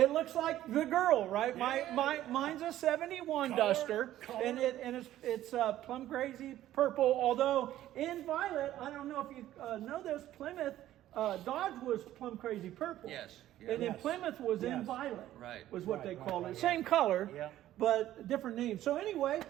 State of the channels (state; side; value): quieter; left; 13.5 dB